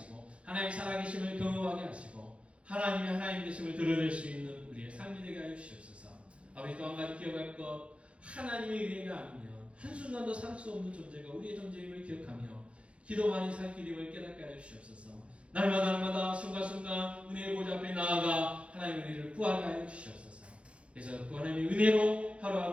하나님의 살아계심을 경험하게 하시고 하나님의 하나님 되심을 드러낼 수 있는 우리의 삶이 되게 하여 주시옵소서. 아버지, 또 한 가지 기억할 것, 하나님의 은혜가 아니면 한순간도 살 수 없는 존재가 우리의 존재임을 기억하며 기도만이 살 길임을 깨닫게 하여 주시옵소서. 날마다 순간순간 은혜의 보좌 앞에 나아가 하나님의 은혜를 구하게 하여 주시옵소서. 그래서 그 하나님의 은혜로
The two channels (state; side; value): late; left; 0.060 ms